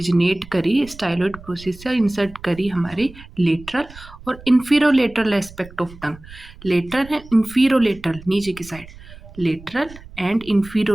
करी, स्टाइलोइड प्रोसेस से इंसर्ट करी हमारी लेटरल और इंफीरोलेटरल एस्पेक्ट ऑफ टंग। लेटरल है, इंफीरोलेटरल नीचे की साइड, लेटरल एंड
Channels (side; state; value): right; noise; rumble, 19 dB below the sound